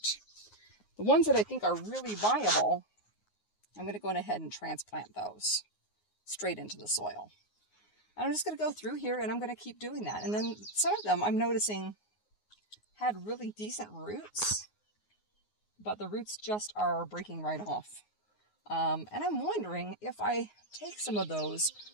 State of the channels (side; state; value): right; late; 9.5 ms